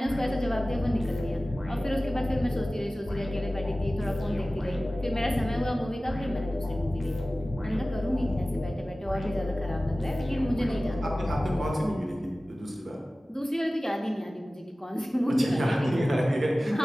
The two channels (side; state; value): both; normal; correlation 0.97